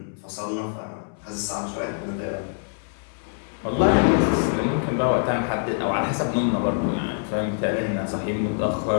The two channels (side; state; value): right; silent; 62 dB below the other